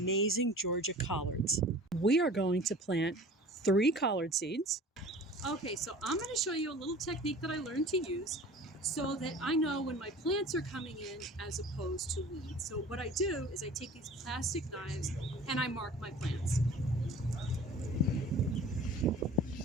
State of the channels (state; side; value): normal; both; correlation 0.43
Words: Georgia collards. We are going to plant 3 collard seeds. Okay, so I'm going to show you a little technique that I learned to use so that I know when my plants are coming in as opposed to weeds. So what I do is I take these plastic knives and I mark my plants.